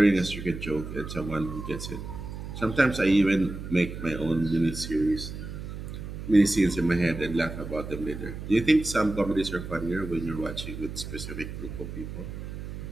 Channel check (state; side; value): noise; right; hum, 8 dB below the sound